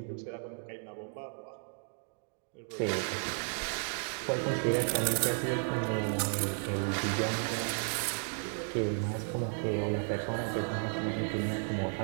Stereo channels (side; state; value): left; silent; 55 dB below the other